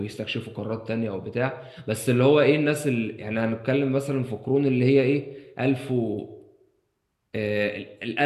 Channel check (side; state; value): both; identical; correlation 1.00